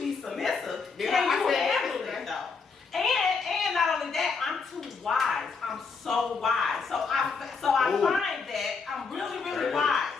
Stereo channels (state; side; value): quieter; right; 5.0 dB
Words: submissive. Yeah, Can I you said handle that. it though? And not only that, I'm too wise. I'm so wise. So I Ooh. find that I'm really wise.